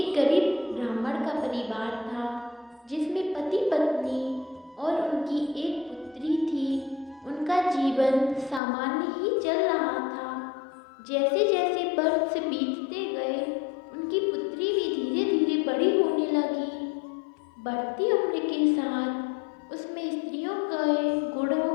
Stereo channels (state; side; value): drops out; right; at 8.6 s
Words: गरीब ब्राह्मण का परिवार था, जिसमें पति पत्नी और उनकी एक पुत्री थी। उनका जीवन सामान्य ही चल रहा था। जैसे जैसे वर्ष बीतते गए, उनकी पुत्री भी धीरे धीरे बड़ी होने लगी। बढ़ती उम्र के साथ उसमें स्त्रियों के